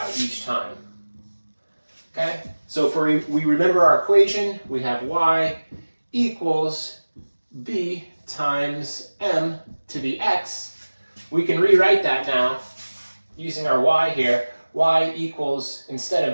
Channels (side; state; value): both; inverted; correlation -1.00